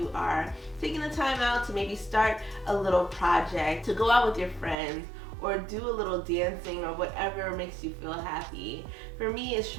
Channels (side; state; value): left; drops out; at 4.8 s